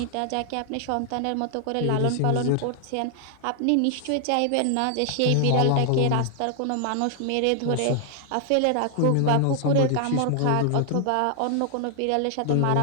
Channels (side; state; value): both; different; correlation 0.00